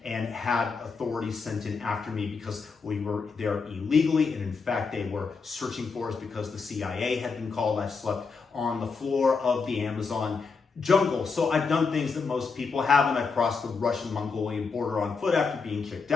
and had authorities sent in after me because we were there illegally. And in fact, they were searching for us because the CIA had been called. I've slept on the floor of the Amazon jungle. So I've done things that most people haven't. I've crossed the Russian-Mongolian border on foot after being kicked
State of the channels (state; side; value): quieter; right; 4.9 dB